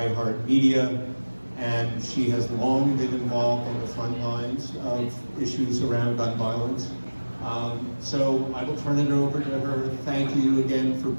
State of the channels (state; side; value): inverted; both; correlation -1.00